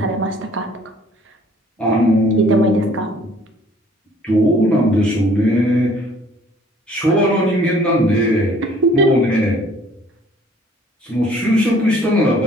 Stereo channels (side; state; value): both; normal; correlation 0.57